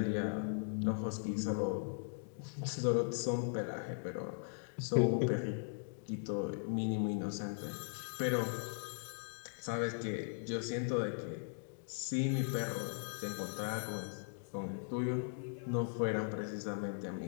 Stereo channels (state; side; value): silent; right; digital silence